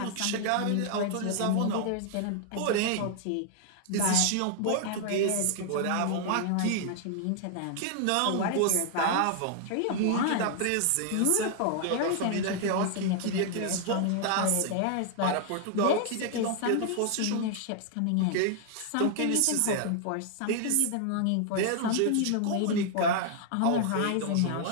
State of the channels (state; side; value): different; both; correlation 0.00